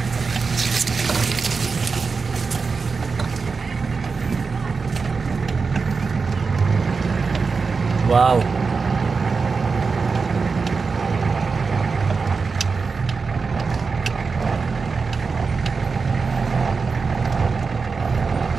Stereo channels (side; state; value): left; quieter; 4.8 dB